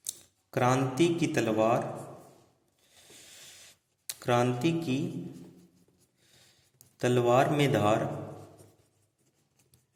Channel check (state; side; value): identical; both; correlation 1.00